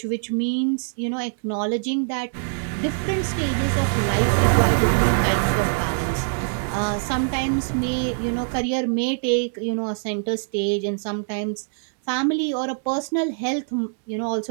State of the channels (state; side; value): silent; left; digital silence